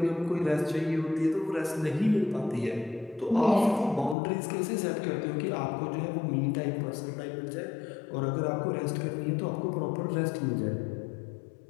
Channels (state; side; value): drops out; right; at 4.2 s